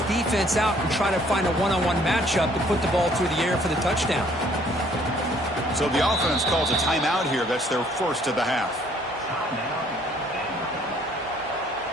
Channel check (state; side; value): normal; both; correlation 0.61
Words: defense out and try to find a one-on-one matchup to put the ball through the air for the touchdown. So the offense calls a timeout here. That's their first of the half.